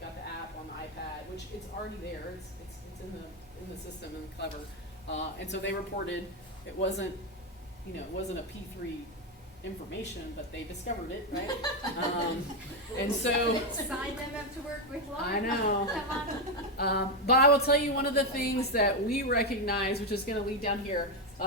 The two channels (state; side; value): normal; both; correlation 0.07